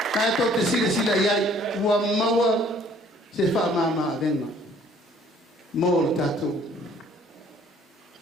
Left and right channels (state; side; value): normal; both; correlation 0.58